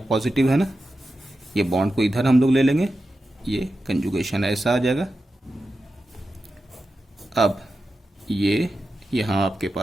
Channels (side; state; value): both; normal; correlation 0.91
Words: है ना, ये बॉन्ड को इधर हम लोग ले लेंगे, ये कंजुगेशन ऐसा आ जाएगा। अब ये यहाँ आपके